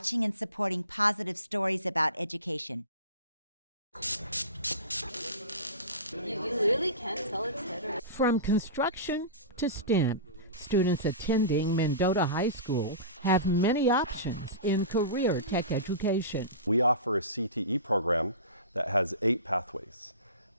and supporting positive stories about education. You really can't tell it's hit or... From construction to STEM, students attending Mendota High School have many options in career tech education. We offer a CTE program that has 8 pathways,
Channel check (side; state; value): both; inverted; correlation -0.30